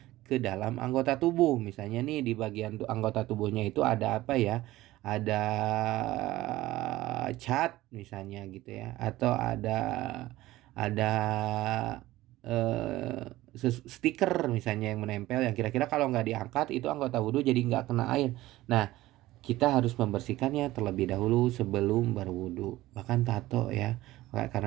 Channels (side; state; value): left; quieter; 16.9 dB